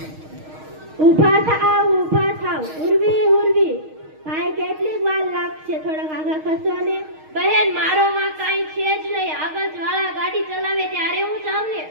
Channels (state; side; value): late; left; 6.4 ms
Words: ઊભા થાવ ઉર્વી ઉર્વી। ભાઈ કેટલી વાર લાગશે? થોડાક આગળ ખસો ને। બહેન મારો માં કાઈ છે જ નહીં। આગળ વાળા ગાડી ચલાવે ત્યારે હું જાઉં ને।